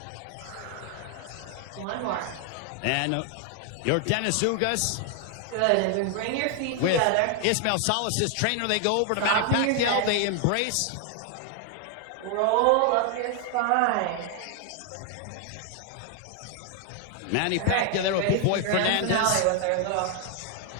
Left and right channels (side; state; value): both; different; correlation 0.00